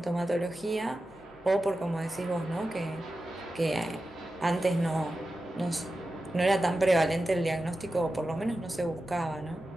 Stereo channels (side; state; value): right; noise; hum, 28 dB below the sound